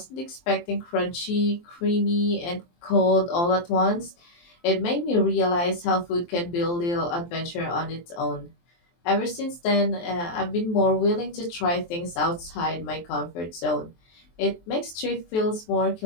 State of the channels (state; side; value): late; right; 23 ms